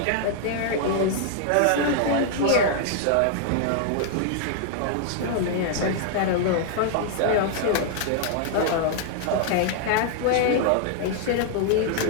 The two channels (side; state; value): both; different; correlation -0.01